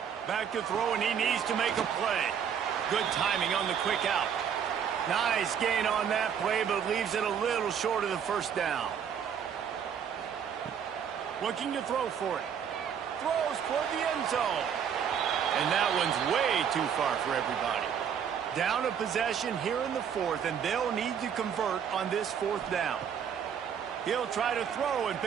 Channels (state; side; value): quieter; left; 8.0 dB